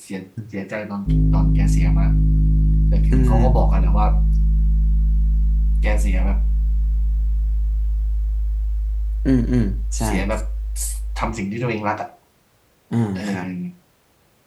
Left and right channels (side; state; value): both; identical; correlation 1.00